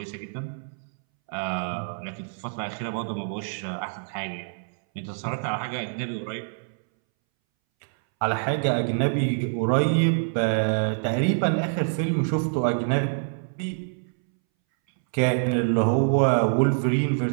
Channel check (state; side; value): silent; left; 61 dB below the other